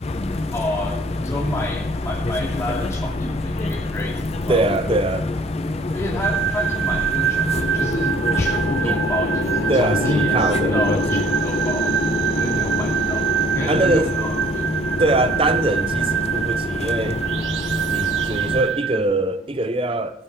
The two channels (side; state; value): both; normal; correlation 0.56